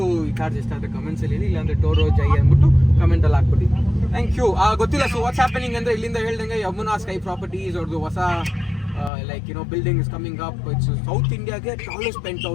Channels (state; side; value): drops out; right; at 9.1 s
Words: ಈ ಕಾರ್ಸ್ ಇಷ್ಟ ಆದರೆ ಕಮೆಂಟ್ಸ್ ಅಲ್ಲಿ ಹೇಳಿ, ಇಲ್ಲಾಂದ್ರೆ ಟೋರೋ ಜೈ ಅಂದ್ಬಿಟ್ಟು ಕಮೆಂಟಲ್ಲಿ ಹಾಕ್ಬಿಡಿ. Thank you. ಗೊತ್ತಿಲ್ಲ. ಸೊ ವಾಟ್ಸ್ ಹ್ಯಾಪನಿಂಗ್ ಅಂದರೆ ಇಲ್ಲಿಂದ ಹೇಳ್ದಂಗೆ ಯಮುನಾ ಸ್ಕೈ ಪ್ರಾಪರ್ಟೀಸ್ ಅವ್ರದ್ದು ಹೊಸ building is coming up. It's south ಇಂಡಿಯಾಗೆ ಟಾಲೆಸ್ಟ್ ಪೆಂಟ್